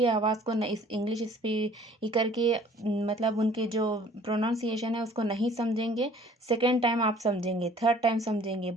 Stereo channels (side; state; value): both; normal; correlation 0.53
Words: आवाज़ को इस इंग्लिश स्पीकर के मतलब उनके जो प्रोनाउंसिएशन है उसको नहीं समझेंगे, सेकेंड टाइम आप समझेंगे, थर्ड टाइम समझेंगे।